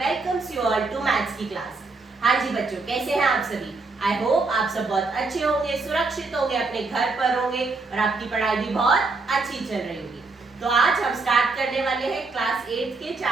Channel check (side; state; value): left; quieter; 3.8 dB